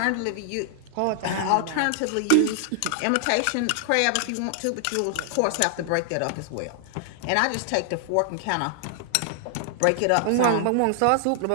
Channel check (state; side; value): different; both; correlation 0.00